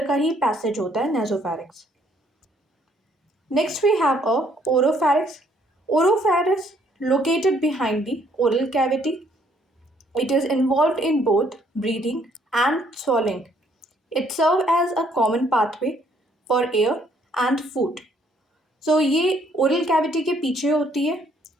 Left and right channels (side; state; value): both; normal; correlation 0.66